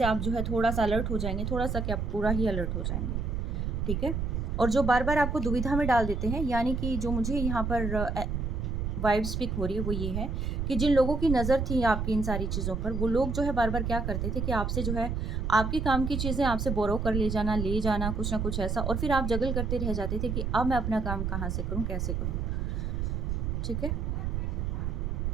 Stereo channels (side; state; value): right; noise; rumble, 1 dB below the sound